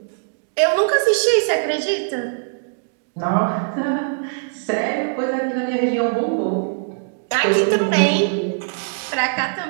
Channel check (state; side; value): silent; left; digital silence